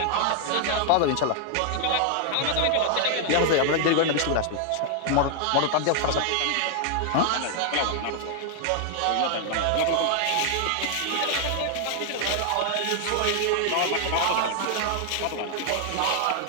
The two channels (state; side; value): different; both; correlation 0.00